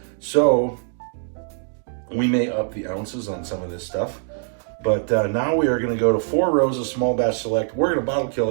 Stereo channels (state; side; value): silent; left; 64 dB below the other